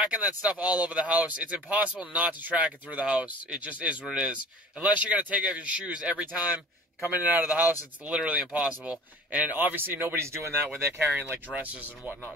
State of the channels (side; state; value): both; normal; correlation 0.43